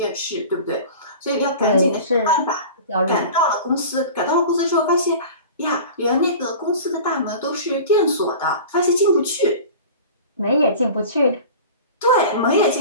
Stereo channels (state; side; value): inverted; both; correlation -0.37